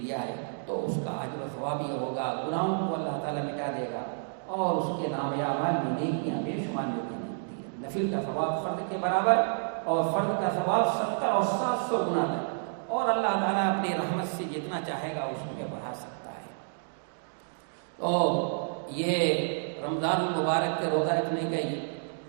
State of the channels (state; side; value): silent; left; digital silence